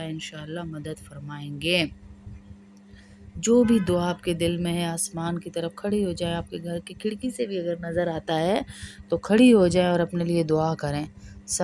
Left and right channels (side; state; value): both; identical; correlation 1.00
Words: مدد فرمائیں گے۔ جو بھی دعا آپ کے دل میں ہے آسمان کی طرف کھڑی ہو جائے، آپ کے گھر کی کھڑکی سے بھی اگر نظر آتا ہے تو کھڑی ہو جائیں اور اپنے لیے دعا کریں،